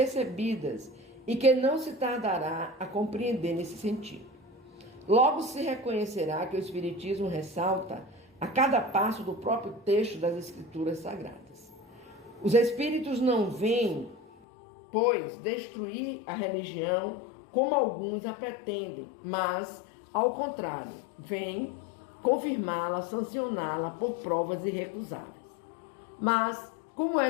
e que não se tardará a compreender nesse sentido. Logo se reconhecerá que o Espiritismo ressalta a cada passo do próprio texto das Escrituras Sagradas. Os Espíritos não vêm, pois, destruir a religião como alguns a pretendem, mas, ao contrário, vêm confirmá-la, sancioná-la por provas irrecusáveis. Mas, como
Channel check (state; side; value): drops out; right; at 14.2 s